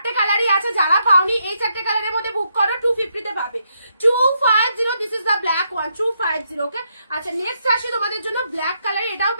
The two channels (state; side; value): inverted; both; correlation -0.78